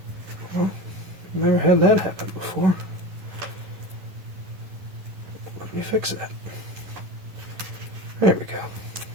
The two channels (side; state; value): left; late; 11 ms